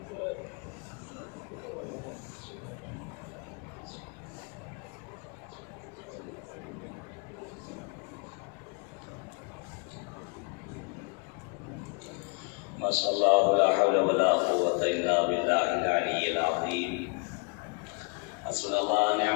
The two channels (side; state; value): right; quieter; 33.0 dB